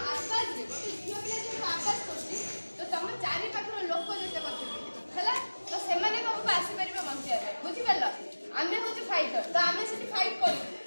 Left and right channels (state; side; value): inverted; both; correlation -1.00